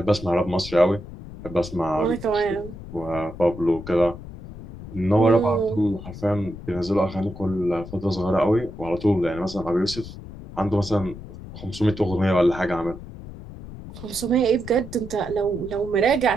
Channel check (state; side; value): noise; left; rumble, 13 dB below the sound